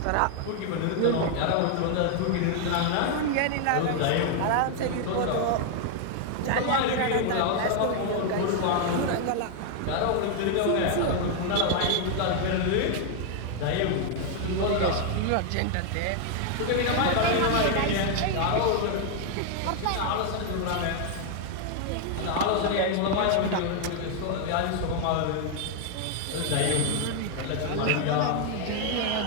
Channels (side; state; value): both; different; correlation 0.00